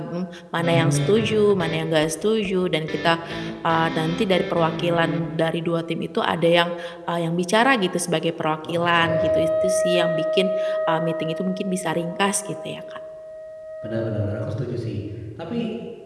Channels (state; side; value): identical; both; correlation 1.00